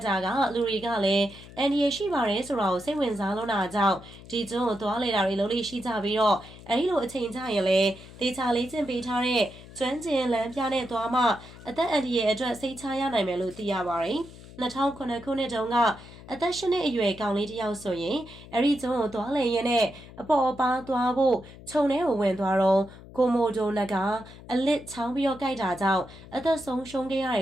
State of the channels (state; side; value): noise; left; hum, 18 dB below the sound